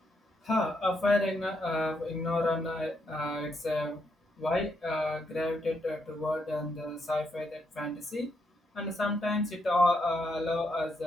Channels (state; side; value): normal; both; correlation 0.78